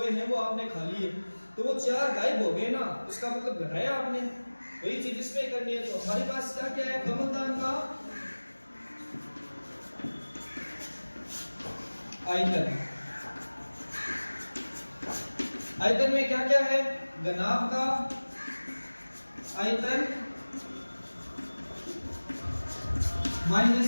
हैं वो आपने खा लिए, तो वो 4 गायब हो गए ना, उसका मतलब घटाया आपने। वही चीज इसमें करनी है। तो हमारे पास क्या है, कमलदान का आयतन में क्या है, घनाभ का आयतन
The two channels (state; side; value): inverted; both; correlation -1.00